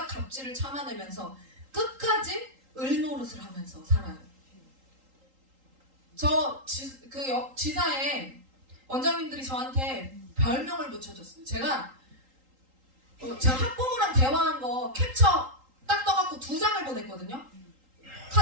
갑질을 참아내면서 끝까지 을노릇을 하면서 살아요. 지사에 원장님들이 저한테 별명을 붙여줬어요. 제가 학부모랑 대화한 거 캡처 딱 떠갖고 2장을 보냈거든요.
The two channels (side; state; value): left; late; 3.8 ms